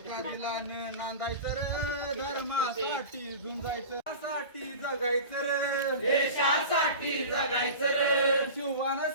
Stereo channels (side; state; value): both; inverted; correlation -0.33